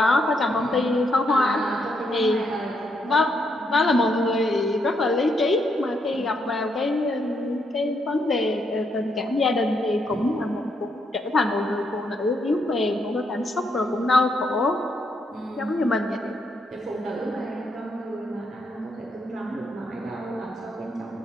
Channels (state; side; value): normal; both; correlation 0.77